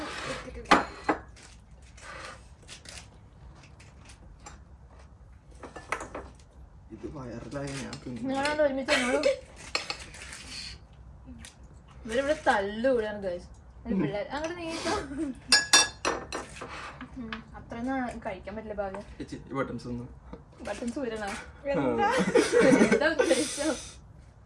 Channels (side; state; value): both; identical; correlation 1.00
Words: എടുത്തിട്ടില്ല. ഇത് വയറിലായി ഞാൻ നിങ്ങളോട് ഒരുമിച്ച് ഇവരിവിടെ തല്ലുകൂടാണ് ഗൈസ് പിള്ളേർ. അങ്ങോട്ട് നീക്കാം. അത്രയൊന്നും കഴിക്കാൻ പറ്റില്ല. ഭാഗ്യം ബട്ടൺസ് ഊരണോ? എന്താ ഉദ്ദേശിച്ചോ?